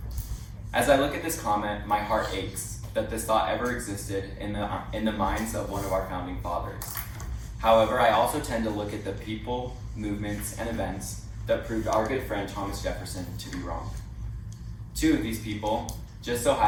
As I look at this comment, my heart aches that this thought ever existed in the minds of one of our founding fathers. However, I also tend to look at the people, movements, and events that proved our good friend Thomas Jefferson to be wrong. Two of these people just so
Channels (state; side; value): identical; both; correlation 1.00